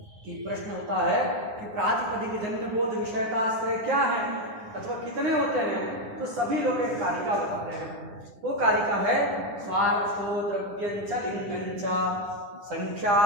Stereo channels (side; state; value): left; late; 9.9 ms